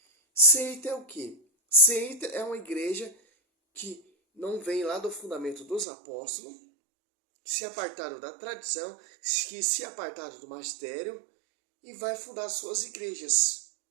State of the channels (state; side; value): drops out; left; at 5.9 s